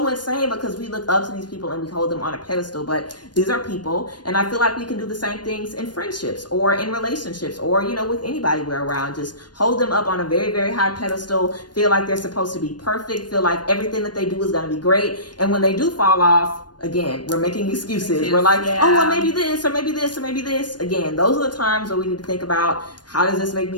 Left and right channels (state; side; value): late; right; 0.70 ms